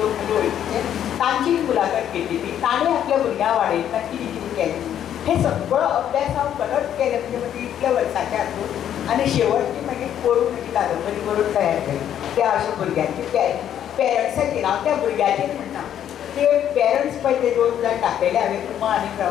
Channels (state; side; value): quieter; right; 10.2 dB